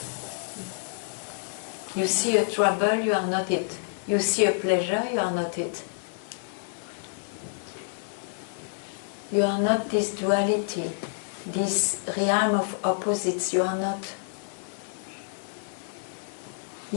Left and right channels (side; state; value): right; silent; 57 dB below the other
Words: You see a trouble, you are not it. You see a pleasure, you are not it. You are not this duality, this realm of opposites, you are not.